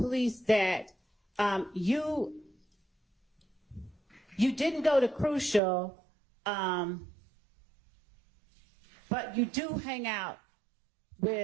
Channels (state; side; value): drops out; left; at 5.6 s